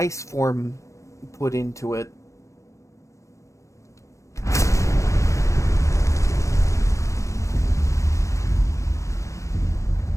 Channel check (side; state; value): right; late; 0.15 ms